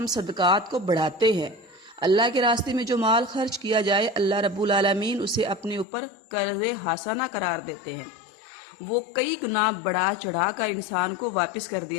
صدقات کو بڑھاتے ہیں۔ اللہ کے راستے میں جو مال خرچ کیا جائے اللہ رب العالمین اسے اپنے اوپر قرض حسنہ قرار دیتے ہیں، وہ کئی گنا بڑھا چڑھا کر انسان کو واپس کر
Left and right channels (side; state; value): right; drops out; at 5.9 s